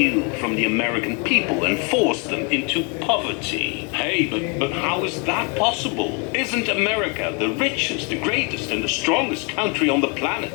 from the American people and force them into poverty. Hey, but how is that possible? Isn't America the richest, the greatest, and the strongest country on the planet?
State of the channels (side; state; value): right; quieter; 32.0 dB